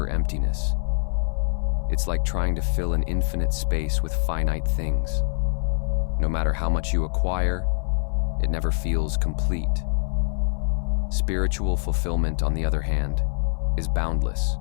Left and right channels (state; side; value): silent; right; 62 dB below the other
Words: emptiness. It's like trying to fill an infinite space with finite things. No matter how much you acquire, it never feels complete. Spiritual fulfillment, on the other hand, is boundless.